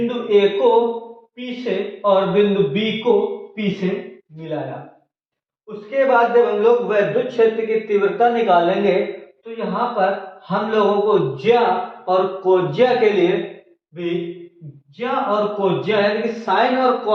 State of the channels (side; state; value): both; identical; correlation 1.00